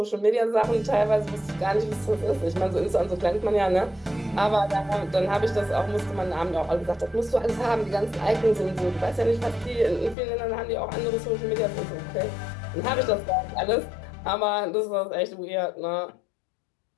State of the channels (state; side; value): drops out; right; at 10.2 s